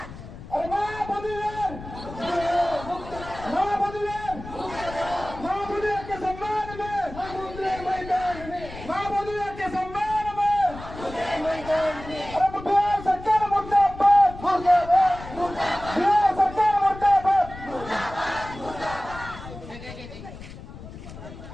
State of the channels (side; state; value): left; noise; rumble, 14 dB below the sound